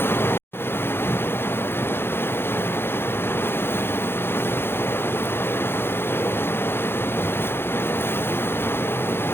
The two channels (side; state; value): right; late; 0.11 ms